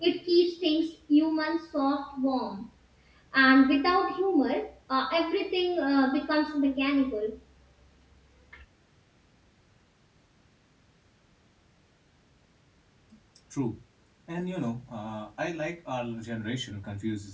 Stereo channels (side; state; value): both; identical; correlation 1.00